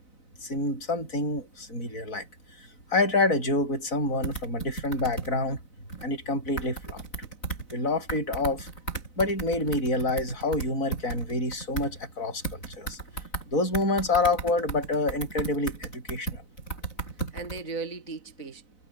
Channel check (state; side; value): late; right; 4.0 ms